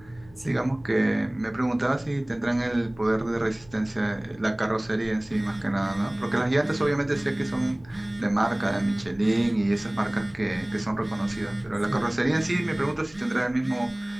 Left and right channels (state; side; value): noise; left; hum, 25 dB below the sound